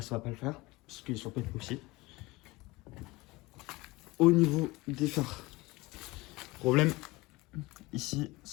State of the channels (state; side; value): quieter; right; 21.8 dB